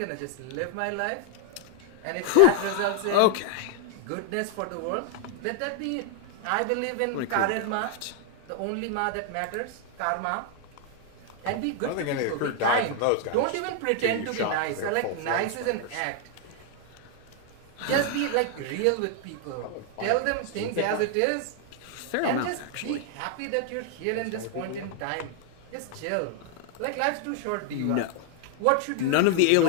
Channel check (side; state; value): both; different; correlation 0.00